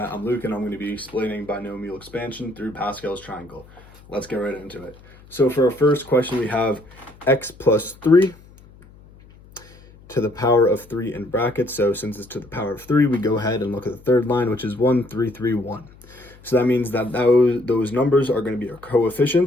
I'm Luke and I'm going to be explaining binomial expansion through Pascal's triangle. Let's get right into it. So for our first question, we have x plus 3 to the power of 3 in brackets. So since it's to the power of 3, we go ahead and look at the third line, which is 1, 3, 3, 1. So that means that those numbers are going to be our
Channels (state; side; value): noise; left; hum, 24 dB below the sound